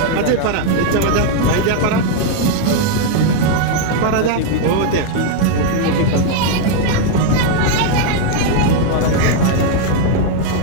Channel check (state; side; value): different; both; correlation 0.00